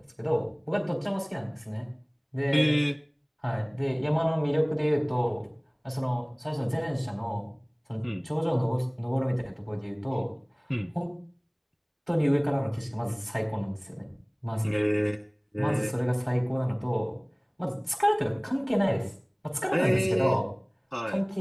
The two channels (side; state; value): both; identical; correlation 1.00